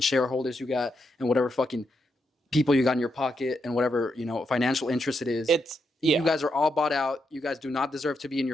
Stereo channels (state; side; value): normal; both; correlation 0.82